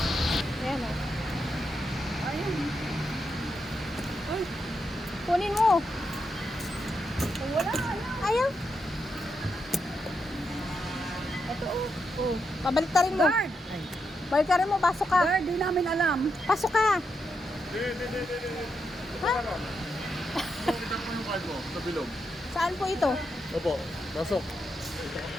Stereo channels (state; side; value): normal; both; correlation 0.83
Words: Ayan o. Ayun. Ay, kunin mo. Wala. Ayaw. Ito oh. Oh. Pabaliktarin mo. Guard. Baliktarin mo, pasok ka. Guard, di namin alam. Pasok ka. Ha? Kita ko yung card mo sa bilog. Saan po ito? Opo, pasok.